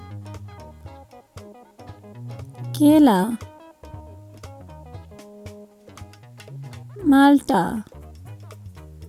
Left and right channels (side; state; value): both; identical; correlation 1.00